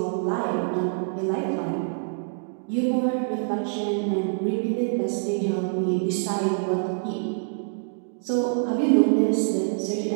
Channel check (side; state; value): left; silent; digital silence